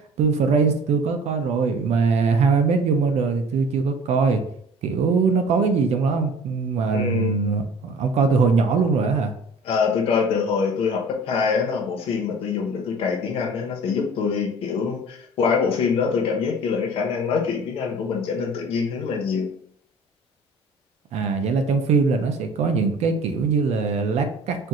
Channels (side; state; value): both; normal; correlation 0.45